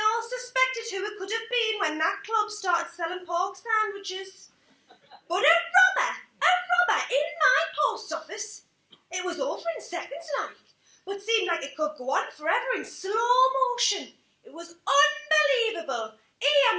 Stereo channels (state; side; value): identical; both; correlation 1.00